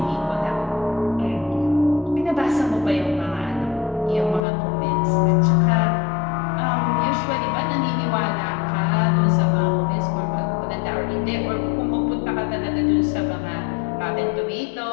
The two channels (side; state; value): right; drops out; at 4.5 s